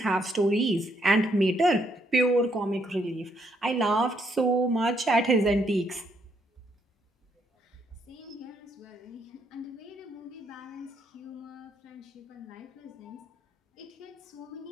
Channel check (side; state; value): both; normal; correlation 0.73